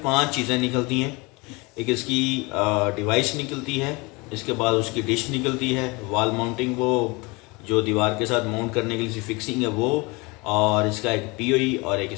5 चीज़ें निकलती हैं। एक इसकी डिवाइस निकलती है, इसके बाद उसकी डिश निकलती है, वॉल माउंटिंग वो जो दीवार के साथ माउंट करने के लिए फिक्सिंग है वो, और इसका एक पीओई और एक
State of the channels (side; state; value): right; quieter; 26.4 dB